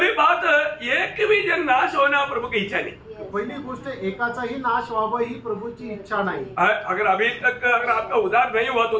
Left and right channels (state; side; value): identical; both; correlation 1.00